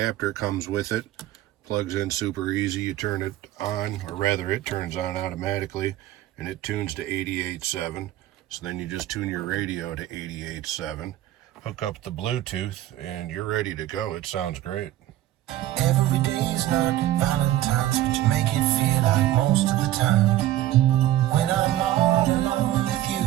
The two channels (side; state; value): left; quieter; 13.9 dB